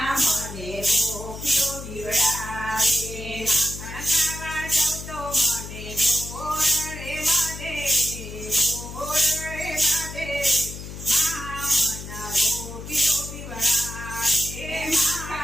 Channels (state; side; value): noise; left; hum, 10 dB below the sound